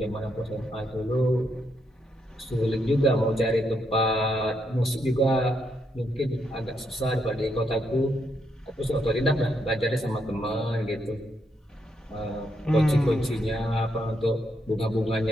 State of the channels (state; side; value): normal; both; correlation 0.78